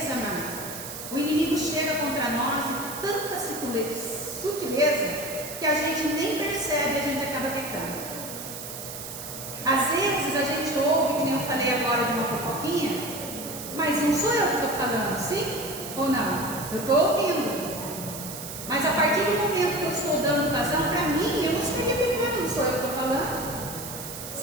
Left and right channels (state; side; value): noise; right; hiss, 9 dB below the sound